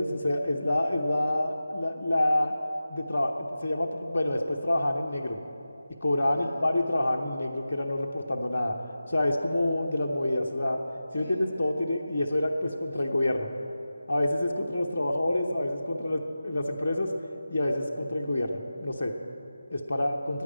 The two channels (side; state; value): both; inverted; correlation -0.94